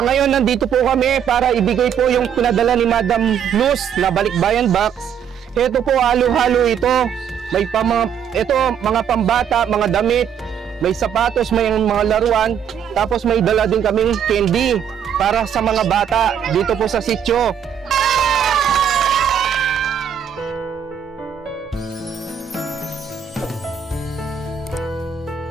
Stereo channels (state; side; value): quieter; left; 8.3 dB